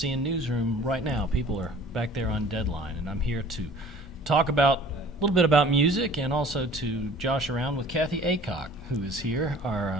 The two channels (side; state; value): both; normal; correlation 0.48